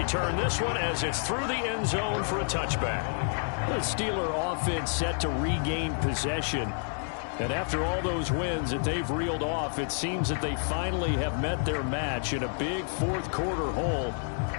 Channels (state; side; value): silent; right; 58 dB below the other